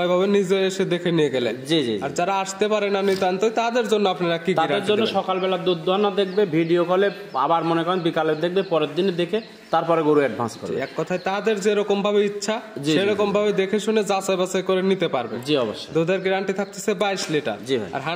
ওইভাবে নিজে এসে দেখে নিয়ে গেলে। জি জি। আর যারা আসতে পারে না নিতান্ত, তাদের জন্য আপনারা কি তাদের জন্য সকালবেলা দুধ দোয়ানো দেখবে, ভিডিও কলে, আবার মনে করেন বিকালে দেখবে, পরের দিনে দেখে তারপরে গরু অ্যাডভান্স করবে। এক কথায় তাদের যেরকম ভাবে ইচ্ছা সেরকম ভাবে দেখে শুনে যাচাই বাছাই করে নিতে পারবে। জি অবশ্যই। দুধের গ্যারান্টি থাকতেছে 22 লিটার। জি ভাই। আর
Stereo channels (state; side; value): identical; both; correlation 1.00